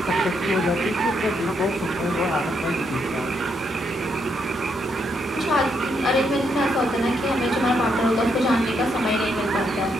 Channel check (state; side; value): normal; both; correlation 0.77